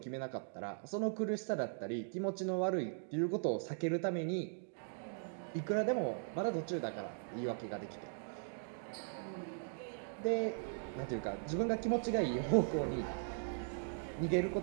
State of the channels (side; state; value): left; silent; digital silence